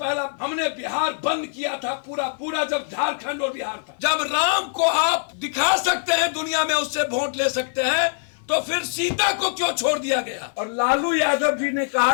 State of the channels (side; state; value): right; silent; 57 dB below the other